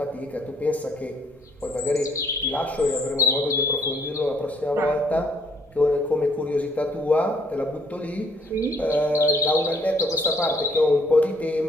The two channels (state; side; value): normal; both; correlation 0.64